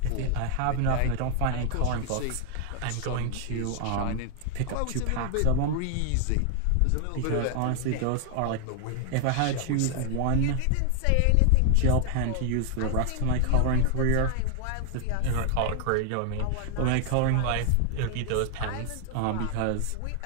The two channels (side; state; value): both; different; correlation 0.00